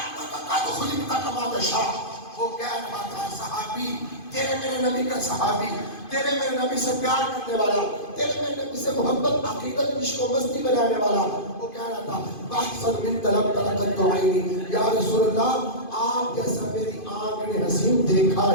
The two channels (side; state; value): right; late; 2.5 ms